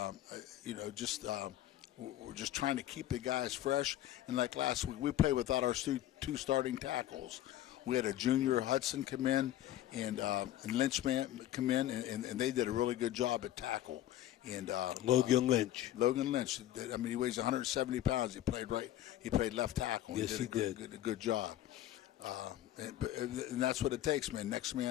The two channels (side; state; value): right; quieter; 13.2 dB